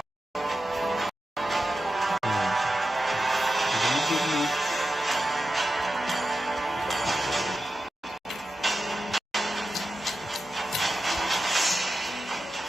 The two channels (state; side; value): normal; both; correlation 0.91